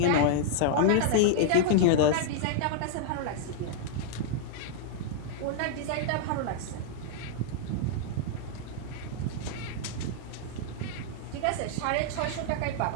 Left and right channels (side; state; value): both; different; correlation -0.01